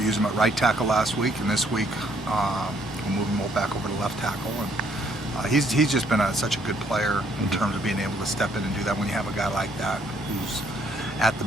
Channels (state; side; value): normal; both; correlation 0.67